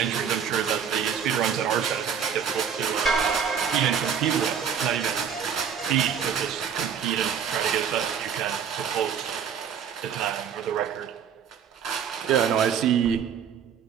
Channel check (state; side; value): quieter; left; 7.6 dB